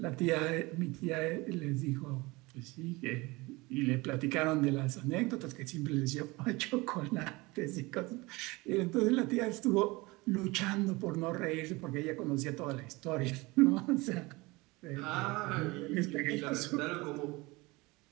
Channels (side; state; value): left; quieter; 23.2 dB